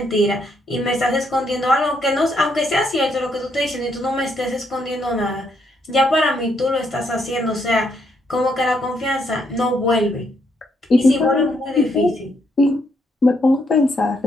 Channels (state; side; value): normal; both; correlation 0.75